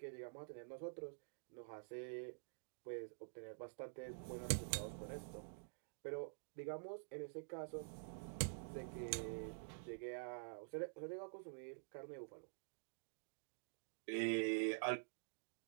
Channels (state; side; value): silent; left; digital silence